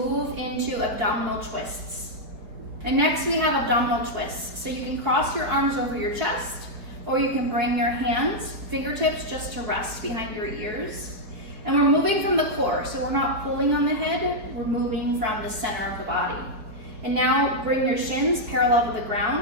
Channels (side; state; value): left; late; 4.8 ms